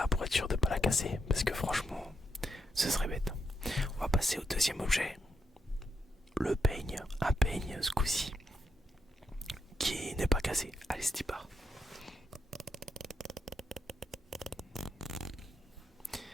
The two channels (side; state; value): both; normal; correlation 0.80